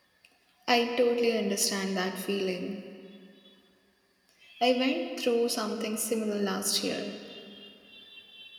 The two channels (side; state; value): both; identical; correlation 1.00